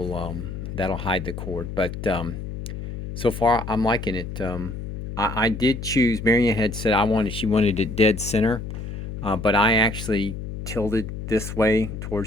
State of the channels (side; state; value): left; noise; hum, 8 dB below the sound